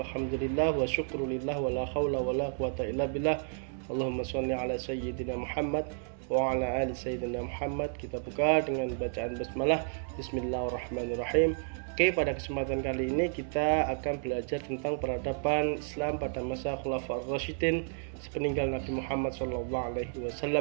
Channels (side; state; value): left; silent; 57 dB below the other